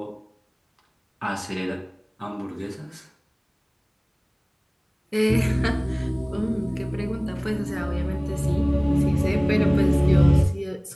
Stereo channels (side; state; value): both; identical; correlation 1.00